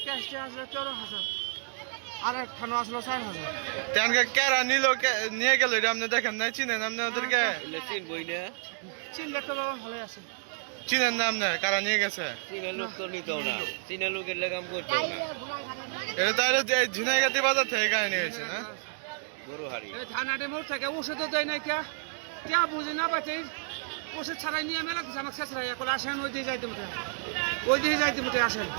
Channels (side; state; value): left; silent; digital silence